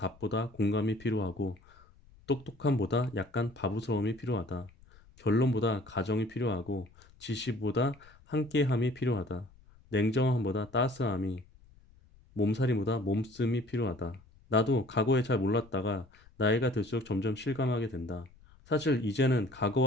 공감이 필요하고 똑똑함보다 약간 바보스러움이 필요하다. 결론보다 가정이 필요하고 지시보다 함께함이 필요하다. 냉정함보다 따스함이, 몸살이보다 몸씀이 필요하다. 나도 과거에 잘 몰랐다가 나이가 들수록 점점 실감하게 된다. 사실 이제는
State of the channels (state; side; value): noise; left; rumble, 26 dB below the sound